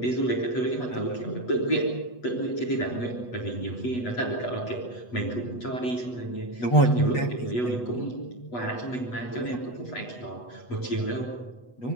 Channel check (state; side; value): late; right; 8.2 ms